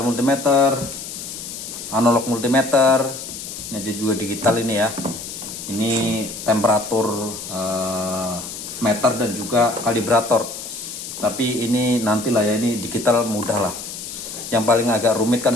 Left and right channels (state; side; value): noise; left; hiss, 9 dB below the sound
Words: multimeter, analog multimeter. Ini juga digital ini ya. Ini temperatur meter dan juga kalibrator. Tapi ini nantilah ya, ini digital mudah lah. Yang paling agak rumit kan